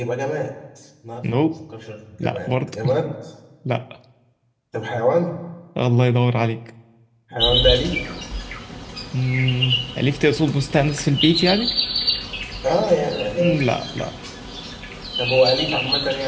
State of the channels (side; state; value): both; identical; correlation 1.00